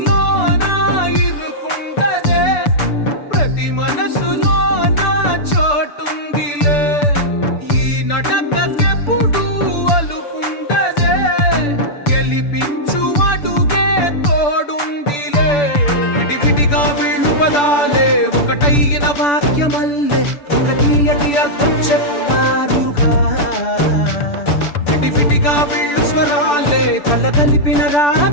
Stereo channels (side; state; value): right; late; 6.9 ms